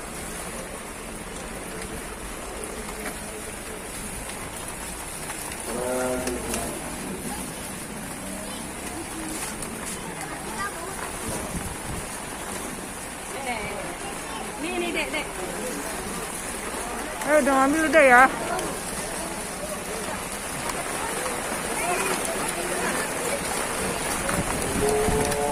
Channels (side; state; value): both; identical; correlation 1.00